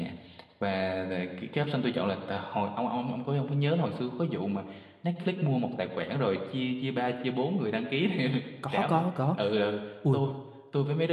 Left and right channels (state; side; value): identical; both; correlation 1.00